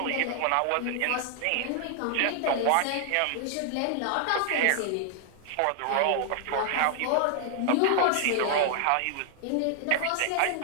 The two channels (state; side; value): different; both; correlation 0.00